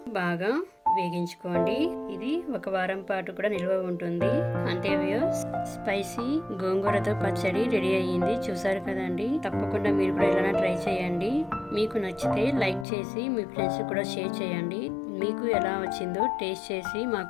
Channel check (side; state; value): right; drops out; at 12.9 s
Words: బాగా వేగించుకోండి. ఇది 1 వారం పాటు కూడా నిల్వ ఉంటుంది. అంతే వ్యూస్, స్పైసీ గోంగూరతో పచ్చడి రెడీ అయ్యింది. చూసారు కదండి. తప్పకుండా మీరు కూడా ఇలా ట్రై చేయండి. మీకు నచ్చితే లైక్ చేసి మీ ఫ్రెండ్స్ కూడా షేర్ చేయండి. మీకు ఎలా వచ్చిందో టేస్ట్ చేసి